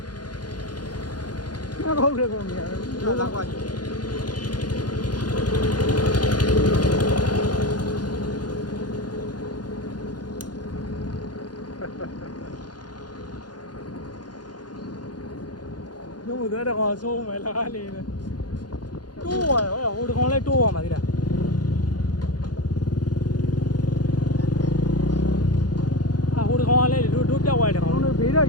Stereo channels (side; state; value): right; late; 0.70 ms